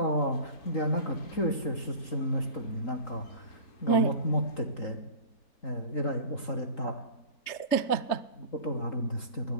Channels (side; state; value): right; late; 3.8 ms